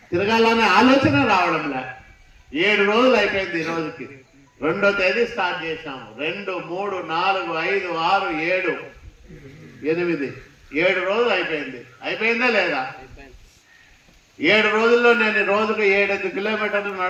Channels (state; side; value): identical; both; correlation 1.00